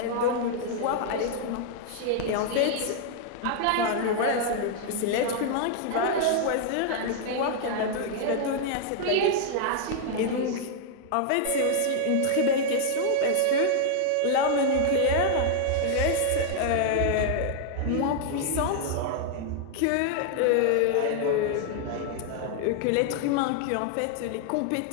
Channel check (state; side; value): different; both; correlation -0.01